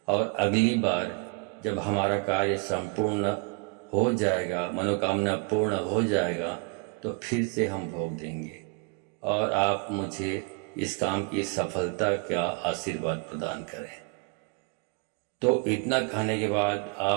और अगली बार जब हमारा कार्य संपूर्ण हो जाएगा, मनोकामना पूर्ण हो जाएगा, तो फिर से हम भोग देंगे और आप मुझे इस काम की सफलता का आशीर्वाद प्रदान करें। तो इतना खाने के बाद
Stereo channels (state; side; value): quieter; left; 32.6 dB